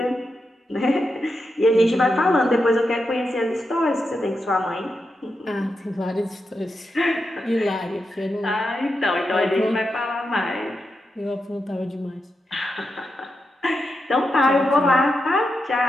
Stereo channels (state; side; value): normal; both; correlation 0.87